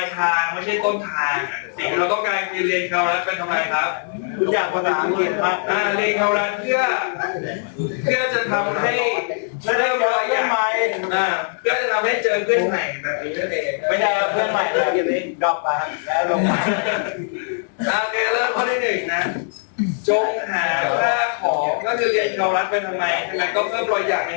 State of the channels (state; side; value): silent; right; 65 dB below the other